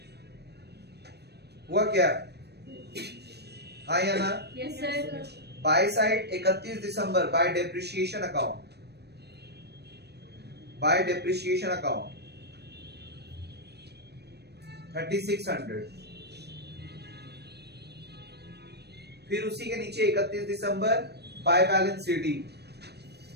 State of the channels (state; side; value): late; left; 0.48 ms